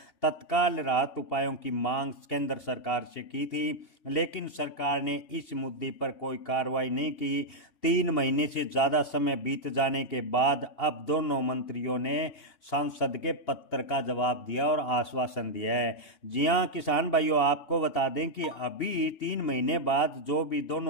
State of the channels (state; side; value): late; right; 2.8 ms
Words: तत्काल राहत उपायों की मांग केंद्र सरकार से की थी, लेकिन सरकार ने इस मुद्दे पर कोई कार्रवाई नहीं की। 3 महीने से ज़्यादा समय बीत जाने के बाद अब दोनों मंत्रियों ने सांसद के पत्र का जवाब दिया और आश्वासन दिया है। जी हाँ किसान भाइयों, आपको बता दें कि अभी 3 महीने बाद जो भी